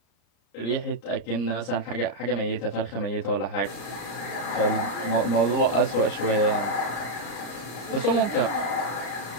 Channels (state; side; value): late; right; 34 ms